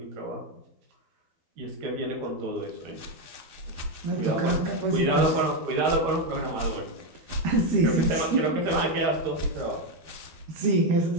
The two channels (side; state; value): left; late; 13 ms